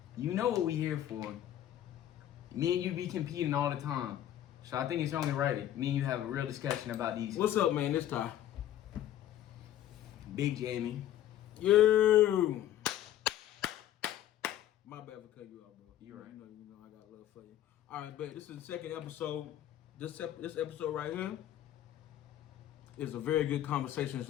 You know what we here for. Me and you be competing all the time. So I think it's only right me and you have a real discussion about these. What's up, man? This time. Big Jamie. You. My bad for cutting you off, bro. You right. You know, I got love for you. All right, bet. This is the second episode. This episode right here is a very good conversation. It's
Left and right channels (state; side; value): quieter; right; 12.0 dB